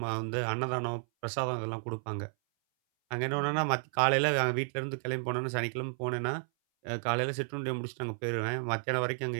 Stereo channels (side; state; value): left; silent; 56 dB below the other